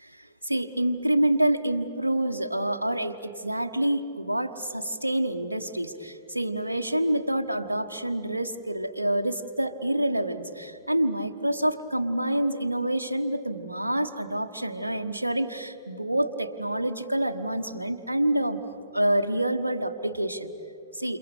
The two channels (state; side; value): inverted; both; correlation -0.90